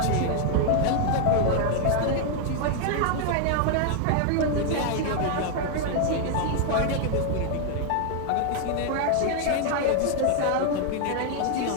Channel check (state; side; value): different; both; correlation 0.00